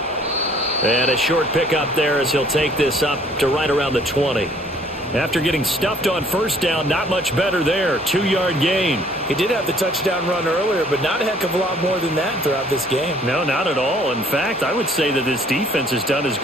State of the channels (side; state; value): both; normal; correlation 0.59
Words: And a short pickup there as he'll take this up to right around the 20. After getting stuffed on first down, not much better there. 2-yard gain. He did have the touchdown run earlier, but not a heck of a lot more than that throughout this game. No, not at all. In fact, I would say that this defense has done as